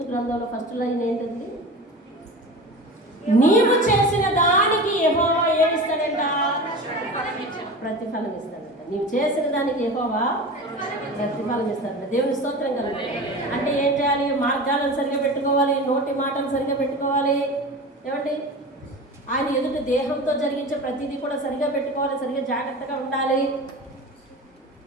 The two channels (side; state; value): both; normal; correlation 0.32